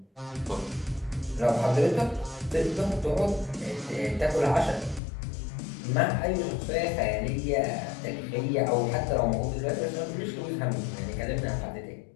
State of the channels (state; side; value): drops out; right; at 5.0 s